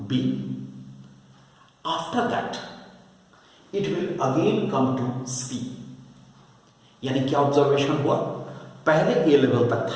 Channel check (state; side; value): identical; both; correlation 1.00